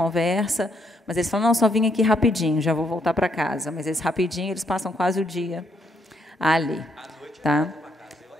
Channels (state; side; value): normal; both; correlation 0.74